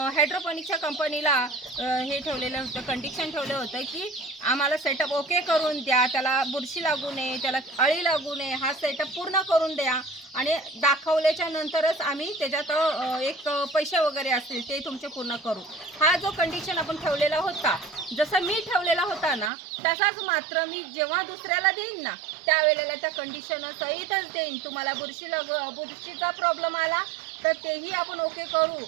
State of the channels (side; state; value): left; drops out; at 19.5 s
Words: हायड्रोपोनिकच्या कंपनीला हे ठेवलेलं होतं, कंडिशन ठेवलं होतं की आम्हाला सेटअप ओके करून द्या, त्याला बुरशी लागू नये, त्याला अळी लागू नये, हा सेटअप पूर्ण करून द्या आणि दाखवल्याच्या नंतरच आम्ही त्याच्यात एक पैसे वगैरे असतील ते तुमचे पूर्ण करू. हा जो कंडिशन आपण ठेवलेला होता, जसं मी ठेवलेला होता ना तसाच मात्र मी जेव्हा दुसऱ्याला देईन ना त्यावेळेला त्या कंडिशन सहितच देईन. तुम्हाला बुरशीचा प्रॉब्लेम आला तर तेही आपण ओके करू